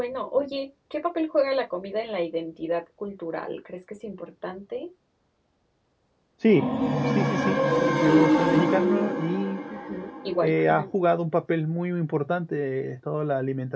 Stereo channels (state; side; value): identical; both; correlation 1.00